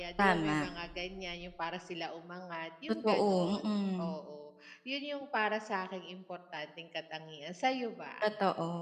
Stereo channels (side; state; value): both; identical; correlation 1.00